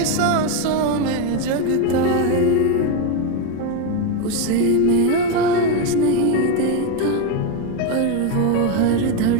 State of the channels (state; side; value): different; both; correlation 0.03